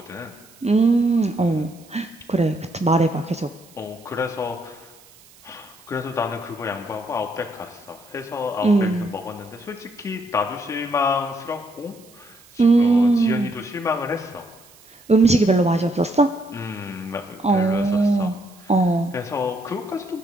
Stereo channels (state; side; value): noise; right; hiss, 26 dB below the sound